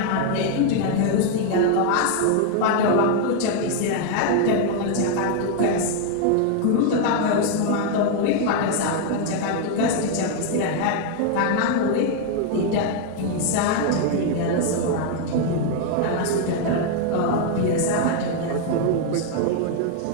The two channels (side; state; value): both; different; correlation 0.00